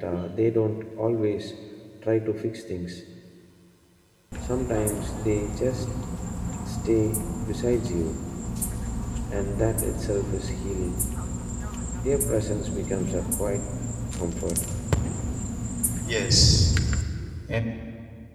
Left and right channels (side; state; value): both; identical; correlation 1.00